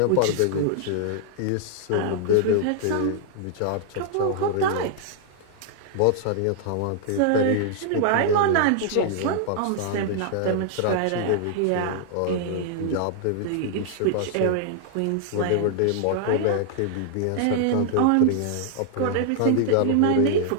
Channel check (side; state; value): both; different; correlation -0.01